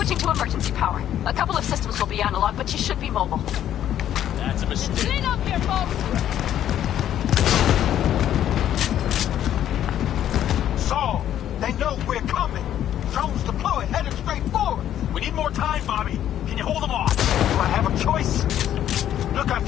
to emergency power. A couple of systems will be analog, but you should be mobile. That's a mistake. Clean up here, folks! Saul, they know we're coming. Drones deployed, headed straight forward. We need more time, Bobby. Can you hold them off? Do I have a choice? Look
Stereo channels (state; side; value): quieter; right; 11.1 dB